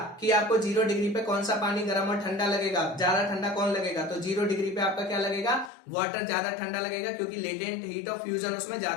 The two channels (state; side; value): drops out; right; at 5.7 s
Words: कि आपको 0 डिग्री पे कौन सा पानी गर्म और ठंडा लगेगा, ज्यादा ठंडा कौन लगेगा, तो 0 डिग्री पे आपका क्या लगेगा, वाटर ज्यादा ठंडा लगेगा, क्योंकि लेटेंट हीट ऑफ फ्यूजन उसमें